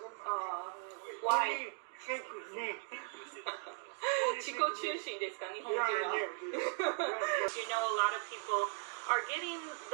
Why? think me. 自己中心ですか、日本人は。Yeah, You know, a lot of people are getting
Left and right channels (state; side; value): silent; left; 52 dB below the other